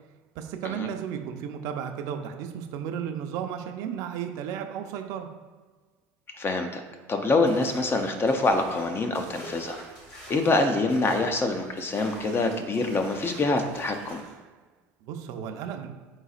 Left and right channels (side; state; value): both; normal; correlation 0.54